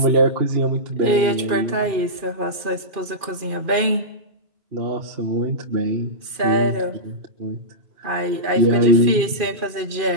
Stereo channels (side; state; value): left; late; 2.5 ms